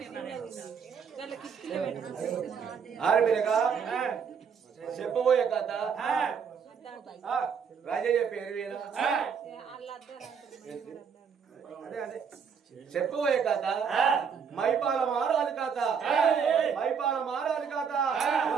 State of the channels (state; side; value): quieter; left; 6.6 dB